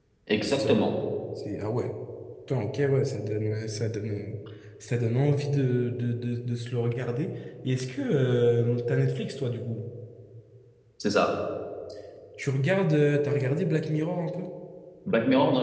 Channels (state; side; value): identical; both; correlation 1.00